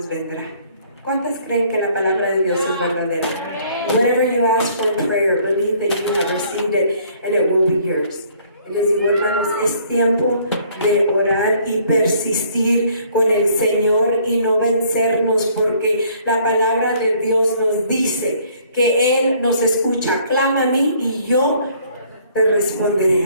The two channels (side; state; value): both; inverted; correlation -0.60